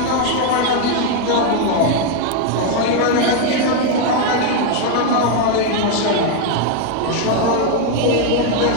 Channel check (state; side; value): different; both; correlation 0.01